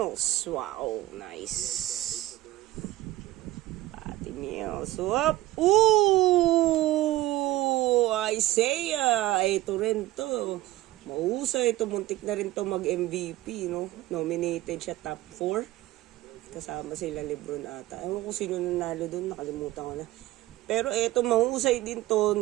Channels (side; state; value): left; quieter; 16.3 dB